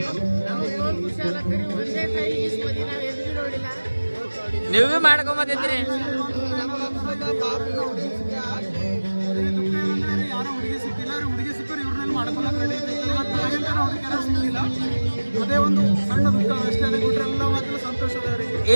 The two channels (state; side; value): inverted; both; correlation -1.00